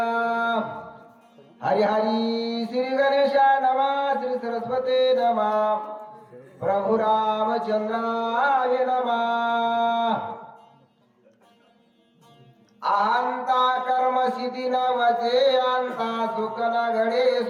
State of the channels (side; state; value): both; identical; correlation 1.00